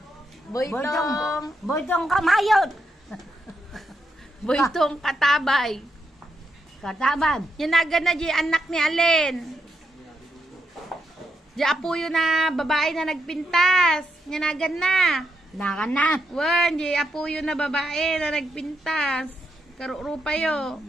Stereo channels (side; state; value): both; normal; correlation 0.81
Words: Buitong. Botong kamayo. Buitong katabay. Kataban. Yanagan na di anak ni Alin. Di apo yun na babae na nagpintas. Yanagan na. Nakanan. Wan, di apo yun na babae na nagpintas. Karuro pa yo.